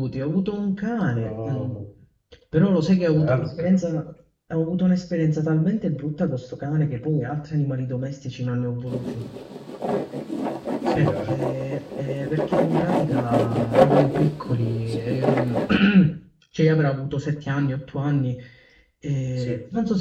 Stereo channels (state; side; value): identical; both; correlation 1.00